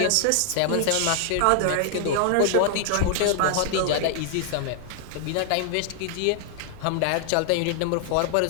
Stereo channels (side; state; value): both; different; correlation 0.00